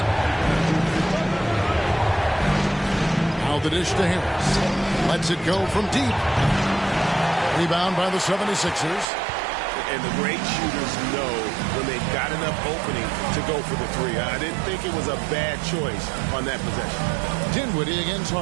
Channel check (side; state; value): left; drops out; at 9.1 s